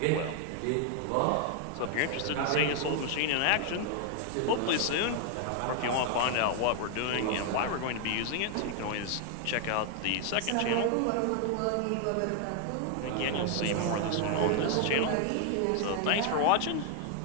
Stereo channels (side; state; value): both; different; correlation 0.00